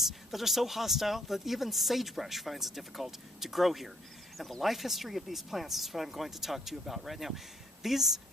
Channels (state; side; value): normal; both; correlation 0.66